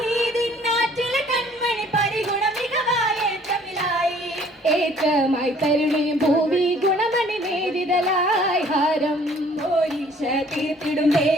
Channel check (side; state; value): both; normal; correlation 0.57